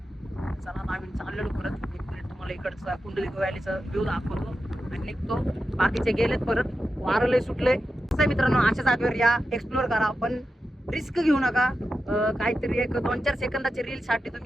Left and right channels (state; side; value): normal; both; correlation 0.90